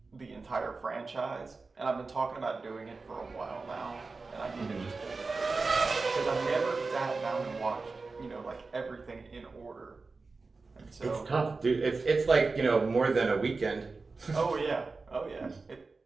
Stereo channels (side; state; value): left; quieter; 4.0 dB